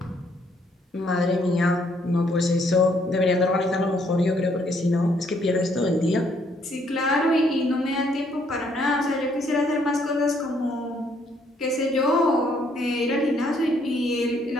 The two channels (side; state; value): both; normal; correlation 0.68